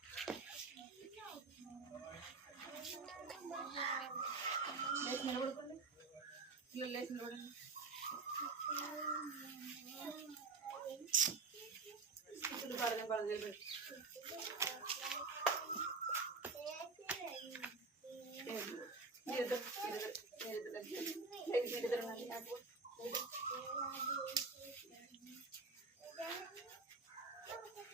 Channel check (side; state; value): left; quieter; 4.2 dB